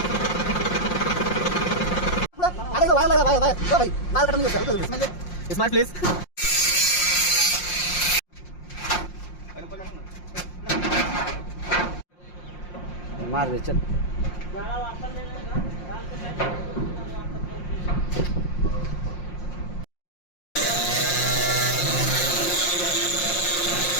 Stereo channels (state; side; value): late; right; 5.6 ms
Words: Smart please. मार दे चल.